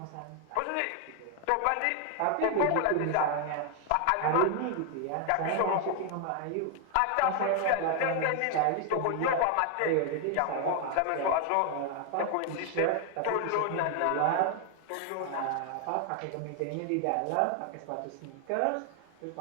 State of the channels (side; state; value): both; different; correlation 0.00